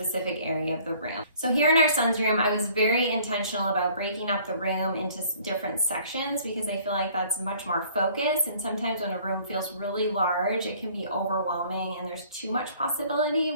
area of the room. So here in our son's room, I was very intentional about breaking up the room into different sections because I feel like that's much more focused. And sometimes when a room feels really large, it can be overwhelming and there's too much possibility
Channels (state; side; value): inverted; both; correlation -0.54